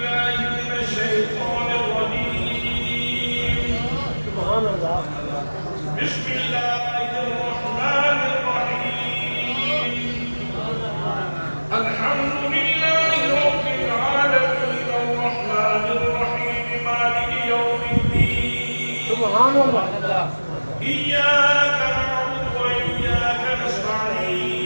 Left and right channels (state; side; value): inverted; both; correlation -1.00